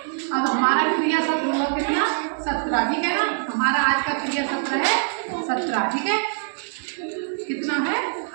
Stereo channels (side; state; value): left; silent; digital silence